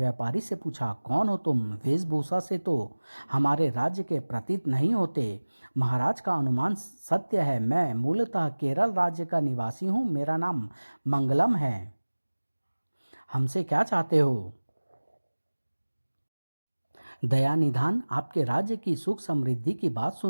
से पूछा, कौन हो तुम? वेशभूषा से तो हमारे राज्य के प्रतीत नहीं होते। महाराज का अनुमान सत्य है। मैं मूलतः केरल राज्य का निवासी हूँ। मेरा नाम मंगलम है। हमसे क्या चाहते हो? दया निधान, आपके राज्य की सुख समृद्धि की बात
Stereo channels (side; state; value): both; inverted; correlation -1.00